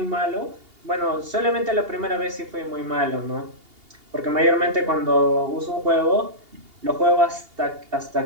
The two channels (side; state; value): left; late; 2.8 ms